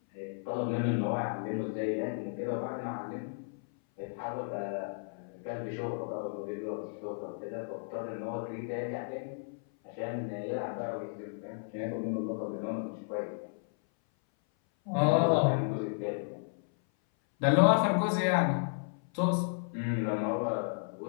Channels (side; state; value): right; silent; 56 dB below the other